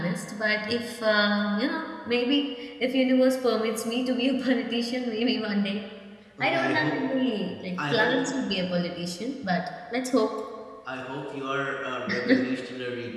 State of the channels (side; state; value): both; identical; correlation 1.00